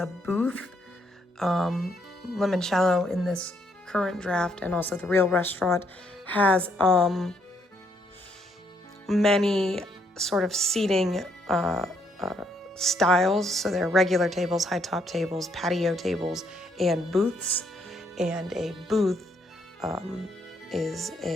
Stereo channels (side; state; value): both; normal; correlation 0.72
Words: booth. Limoncello in this current draft and also the real restaurant has many sort of seating styles. So there are regular tables, high top tables, patio tables, and booths. And a booth